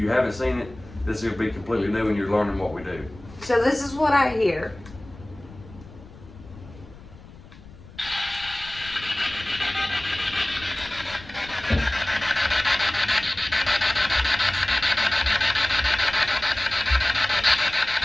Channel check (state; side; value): noise; left; rumble, 19 dB below the sound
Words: haven't seen it, this will be completely new and you're learning what we do. So this is what I hear.